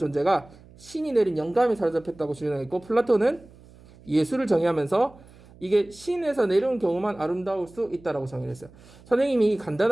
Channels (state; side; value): noise; right; hum, 24 dB below the sound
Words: 신이 내린 영감에 사로잡혔다고 주장했고 플라톤은 예술을 정의하면서 이게 신에서 내려온 경우만 아름다울 수 있다라고 정의했어요. 선생님이